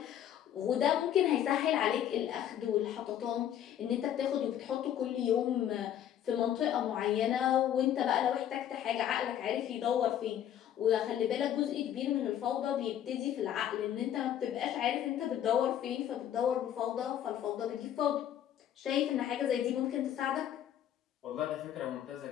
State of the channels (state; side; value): quieter; right; 10.6 dB